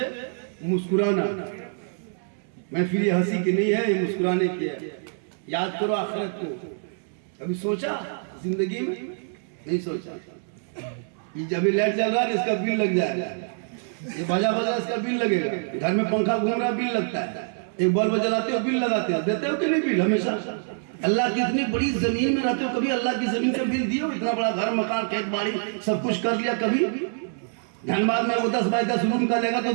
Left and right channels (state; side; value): silent; left; 61 dB below the other